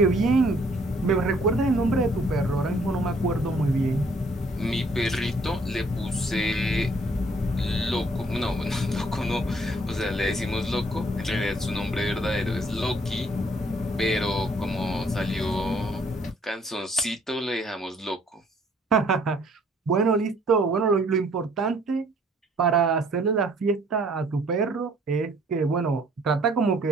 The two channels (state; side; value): normal; both; correlation 0.62